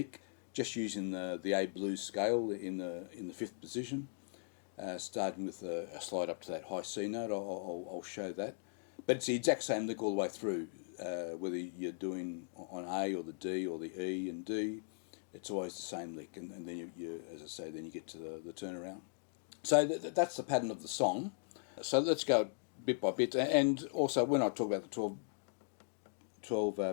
just using the A blues scale in the fifth position, starting with a slide up to that high C note. I'll show that, but it's the exact same lick all the way through, whether you're doing on A or the D or the E and D. It's always the same lick, and then you, as I say, then you get to the turnaround. So that's the pattern of the song. So let's go bit by bit, and also when I talk about the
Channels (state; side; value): silent; right; digital silence